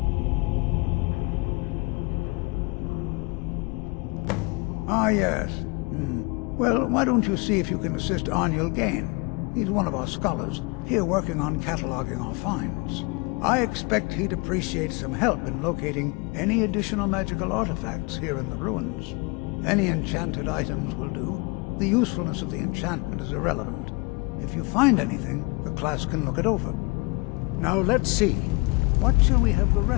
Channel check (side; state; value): right; quieter; 28.3 dB